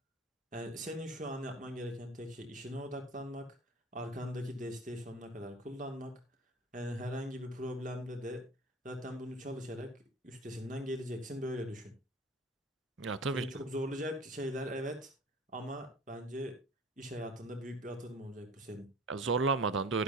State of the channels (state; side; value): normal; both; correlation 0.41